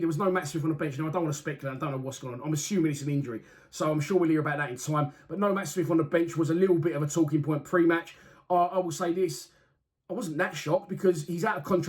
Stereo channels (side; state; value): both; identical; correlation 1.00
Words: was no Matt Smith on the bench. Now, I don't want to speculate. I don't know what's going on. I'm assuming it's an injury, so I'm sure we'll hear about that in time. But no Matt Smith on the bench was a little bit of a talking point pre-match. I will say this. I wasn't that shocked, because he's out of